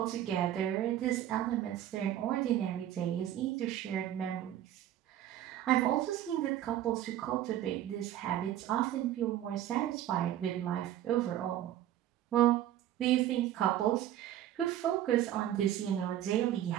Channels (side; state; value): left; quieter; 12.2 dB